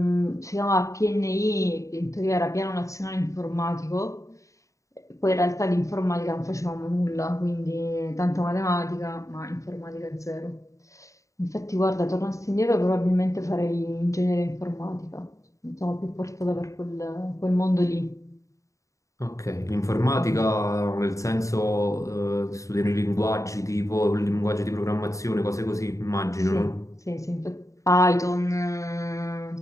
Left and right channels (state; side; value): late; right; 0.15 ms